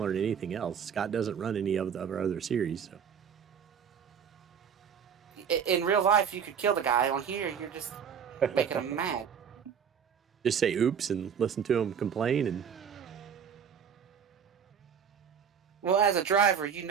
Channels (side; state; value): left; quieter; 7.4 dB